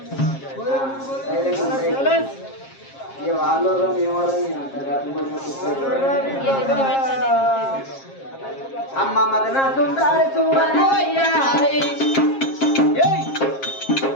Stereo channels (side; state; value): right; late; 7.4 ms